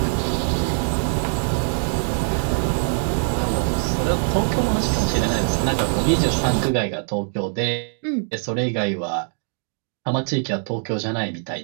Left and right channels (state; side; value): silent; left; digital silence